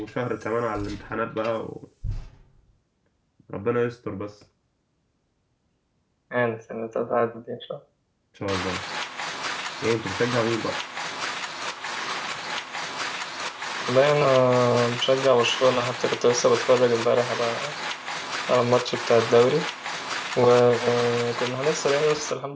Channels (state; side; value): identical; both; correlation 1.00